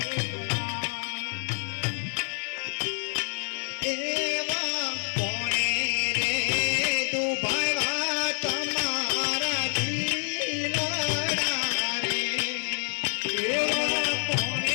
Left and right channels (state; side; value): silent; right; 57 dB below the other